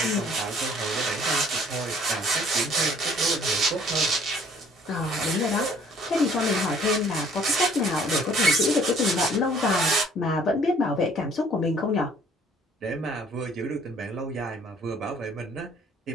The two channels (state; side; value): normal; both; correlation 0.58